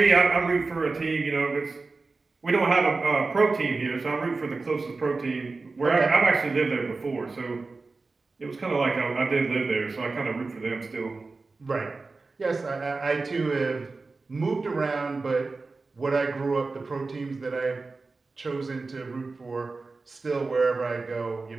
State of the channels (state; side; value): quieter; left; 3.8 dB